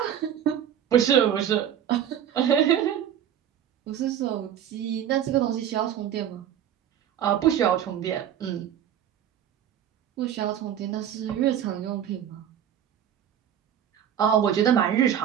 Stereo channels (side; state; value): left; quieter; 9.8 dB